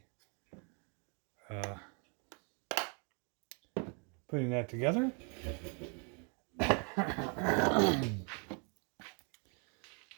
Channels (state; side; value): quieter; left; 36.0 dB